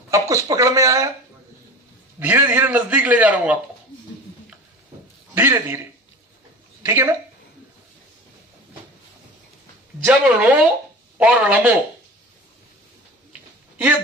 अब कुछ पकड़ में आया? धीरे धीरे नजदीक ले जा रहा हूं आपको, धीरे धीरे। ठीक है ना? जब णो और णमो ये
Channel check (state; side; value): normal; both; correlation 0.36